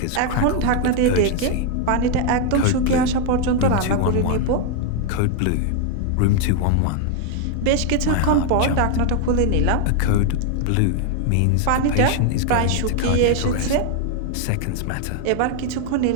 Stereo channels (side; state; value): both; different; correlation 0.01